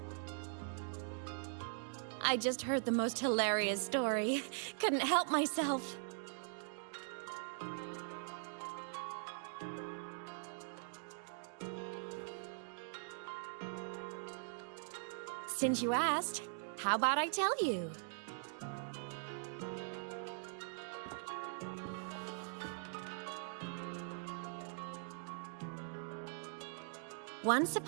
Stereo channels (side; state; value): left; silent; digital silence